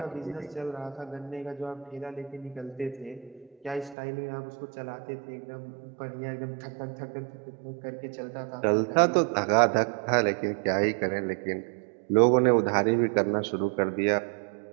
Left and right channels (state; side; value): drops out; left; at 4.0 s